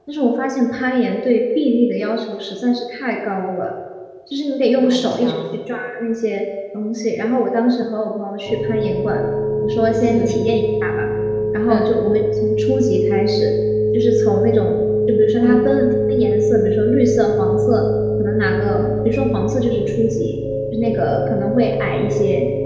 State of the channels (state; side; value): identical; both; correlation 1.00